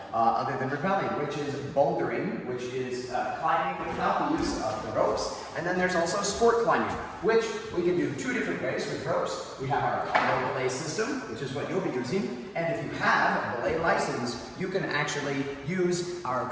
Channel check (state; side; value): identical; both; correlation 1.00